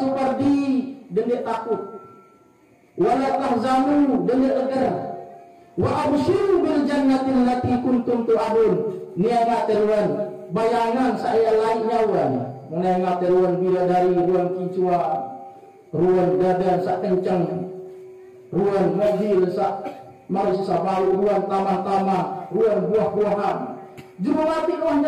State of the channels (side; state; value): both; identical; correlation 1.00